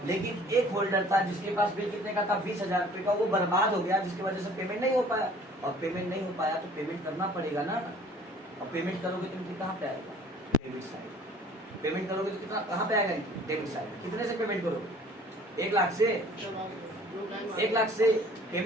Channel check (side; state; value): both; normal; correlation 0.52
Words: लेकिन एक होल्डर था जिसके पास बिल कितने का था? 20,000 रुपए का, वो बर्बाद हो गया, जिसकी वजह से पेमेंट नहीं हो पाया। और पेमेंट नहीं हो पाया तो पेमेंट करना पड़ेगा ना। और पेमेंट करोगे तो कहाँ पे आएगा? Debit side. पेमेंट करोगे तो कितना कहाँ पे आएगा? Debit side. कितने से पेमेंट करोगे? 1 लाख से। 1 लाख से